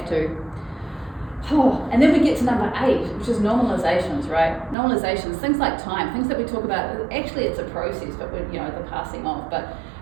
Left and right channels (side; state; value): left; drops out; at 4.8 s